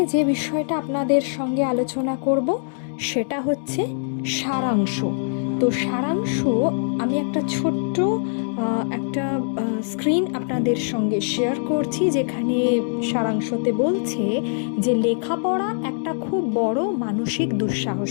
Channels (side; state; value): right; silent; 64 dB below the other